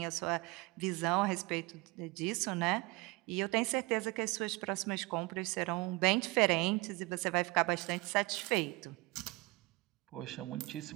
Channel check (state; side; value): quieter; left; 23.2 dB